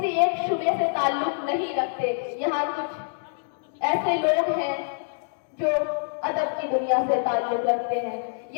एक शुबे से ताल्लुक नहीं रखते। यहाँ कुछ ऐसे लोग हैं जो अदब की दुनिया से ताल्लुक रखते हैं,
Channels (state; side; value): silent; right; digital silence